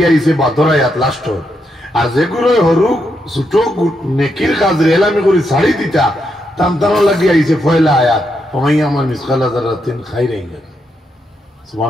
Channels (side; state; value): both; normal; correlation 0.81